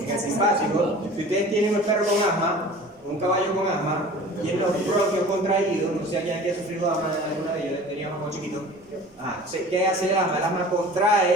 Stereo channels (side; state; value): both; normal; correlation 0.42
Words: el simpático, si ustedes tienen un perro con asma, un caballo con asma, y en los bronquios contraídos, no sé si alguien aquí ha sufrido asma, alguna de ellos tenía asma cuando chiquito. ¿Qué hace el asma? El asma